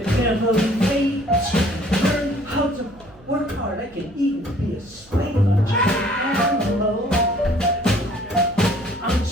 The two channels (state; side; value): noise; right; hum, 26 dB below the sound